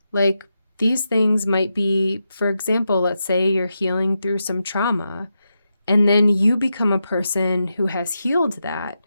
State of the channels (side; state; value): both; inverted; correlation -0.87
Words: Like, these things might be, for example, let's say you're healing through some trauma, and then you become a person who has healed that.